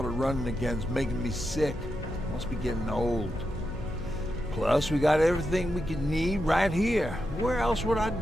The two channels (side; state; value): left; noise; hum, 11 dB below the sound